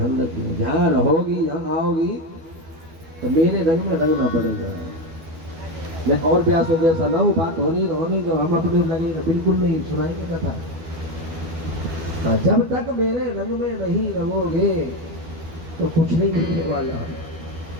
रखिए। जहाँ रहोगी, जहाँ आओगी तो मेरे रंग में रंगना पड़ेगा। मैं और ब्यास जैसा ना हूँ, बात होने दो, हम अपने लगे बिल्कुल नहीं सुनाएंगे कथा। जब तक मेरे रंग में नहीं रहोगे तो कुछ नहीं मिलने वाला।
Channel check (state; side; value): late; left; 12 ms